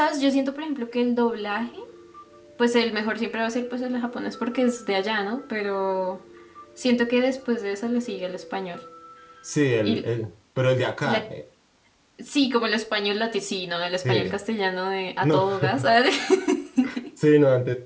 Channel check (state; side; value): identical; both; correlation 1.00